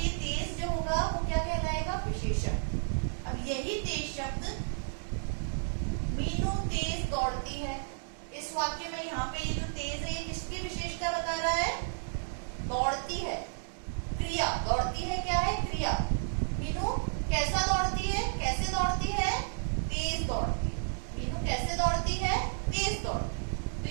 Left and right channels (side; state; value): left; silent; digital silence